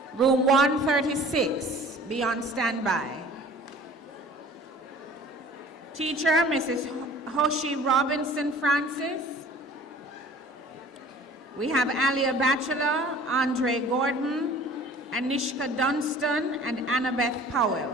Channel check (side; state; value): both; normal; correlation 0.47